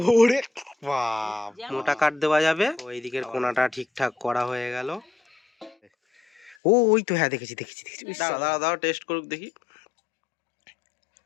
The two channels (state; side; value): drops out; right; at 6.6 s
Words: ওরে বাপ, মোটা কাট দেওয়া যাবে। ওই দিকের কোণাটা ঠিকঠাক করা হয়ে গেল। ও ওই তো, হ্যাঁ দেখেছি। দাঁড়াও টেস্ট করুক দেখি।